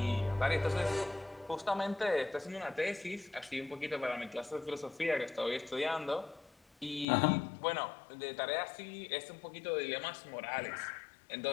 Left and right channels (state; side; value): drops out; right; at 7.1 s